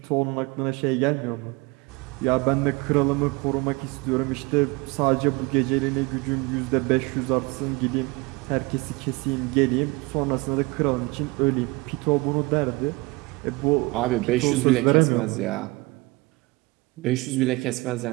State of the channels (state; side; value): quieter; left; 24.7 dB